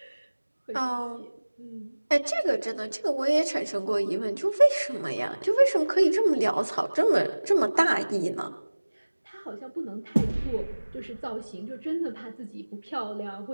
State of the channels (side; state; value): both; inverted; correlation -1.00